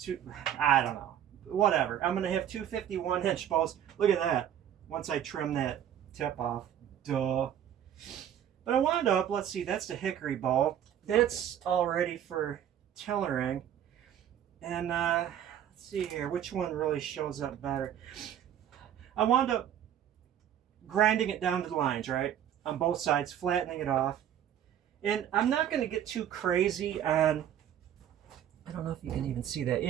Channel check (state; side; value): quieter; left; 10.3 dB